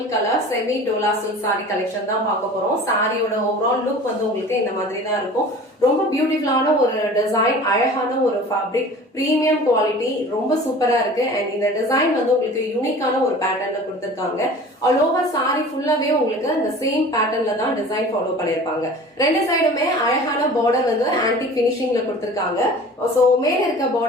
colour semi Dola silk sorry collection தான் பார்க்க போறோம். சாரியோட ஓவரால் லுக் வந்து உங்களுக்கு இந்த மாதிரி தான் இருக்கும். ரொம்ப பியூட்டிஃபுல்லான ஒரு டிசைன், அழகான ஒரு ஃபேப்ரிக், பிரீமியம் குவாலிட்டி, ரொம்ப சூப்பரா இருக்கு. அண்ட் இந்த டிசைன் வந்து உங்களுக்கு யூனிக்கான ஒரு பேட்டர்ன்ல கொடுத்திருக்காங்க. ஆல் ஓவர் சாரி ஃபுல்லாவே உங்களுக்கு இந்த சேம் பேட்டர்ன்ல தான் டிசைன் ஃபாலோ பண்ணிருப்பாங்க. ரெண்டு சைடுமே அழகான பார்டர் வந்து ஆன்டிக் பினிஷிங்ல கொடுத்திருக்காங்க. சோ மேல இருக்க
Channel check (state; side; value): normal; both; correlation 0.42